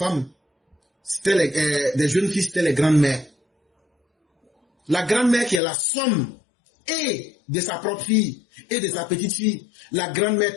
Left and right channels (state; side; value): drops out; right; at 5.6 s